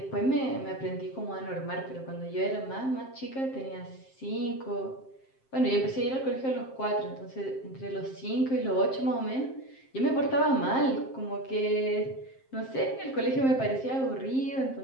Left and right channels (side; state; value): right; late; 7.6 ms